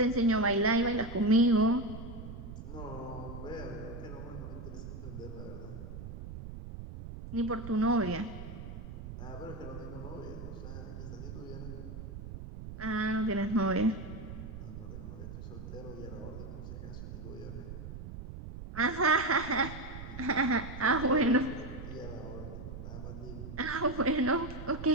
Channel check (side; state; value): right; noise; rumble, 10 dB below the sound